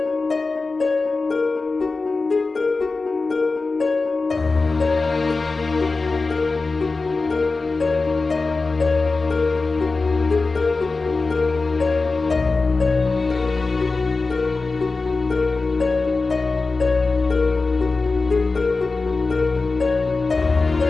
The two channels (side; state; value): right; quieter; 3.8 dB